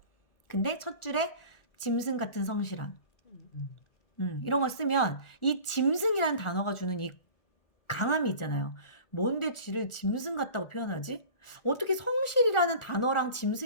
근데 첫 줄에 짐승 같은 성실함. 이런 거 쓰면 이 짐승이라는 단어가 주는 이 강함이 있잖아요. 뭔데 쥐를 짐승 같다고 표현하지? 어떻게 성실이라는 단어랑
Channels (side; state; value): right; late; 1.4 ms